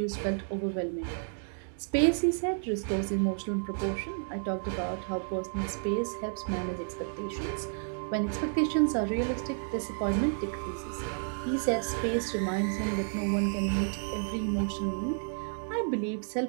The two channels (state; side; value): silent; left; digital silence